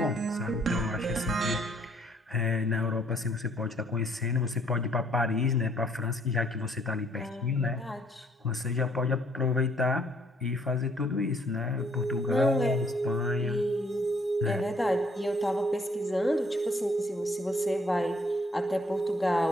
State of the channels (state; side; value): normal; both; correlation 0.65